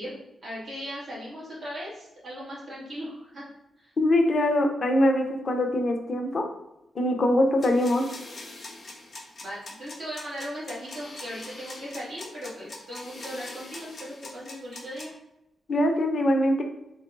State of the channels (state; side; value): normal; both; correlation 0.83